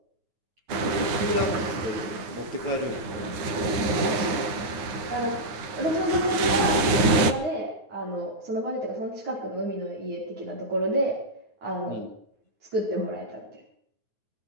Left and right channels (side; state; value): left; late; 9.4 ms